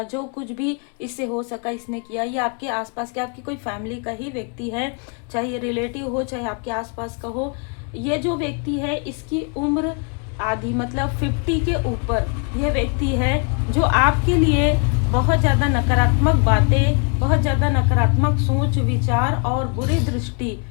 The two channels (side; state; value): right; quieter; 38.0 dB